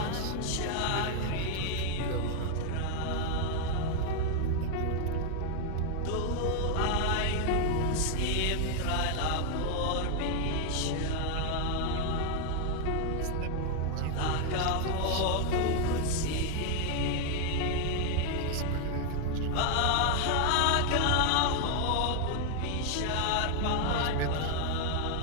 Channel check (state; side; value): different; both; correlation 0.00